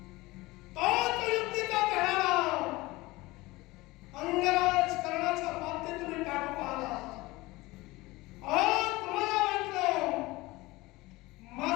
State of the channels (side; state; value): right; quieter; 20.7 dB